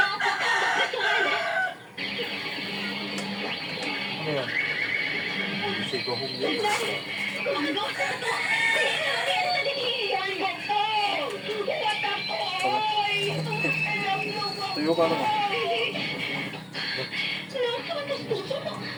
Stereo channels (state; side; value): identical; both; correlation 1.00